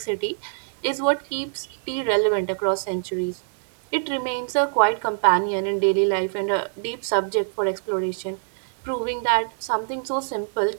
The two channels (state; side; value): silent; left; digital silence